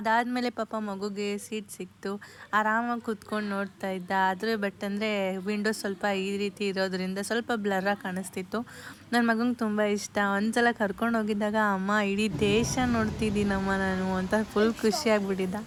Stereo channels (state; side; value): identical; both; correlation 1.00